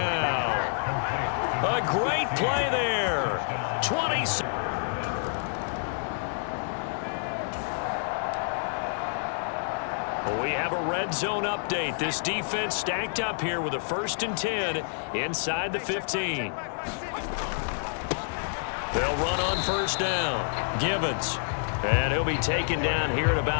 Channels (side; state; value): right; silent; digital silence